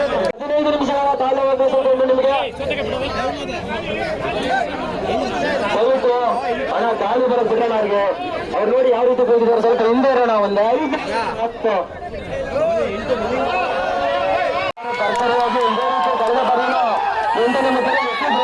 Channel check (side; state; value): both; identical; correlation 1.00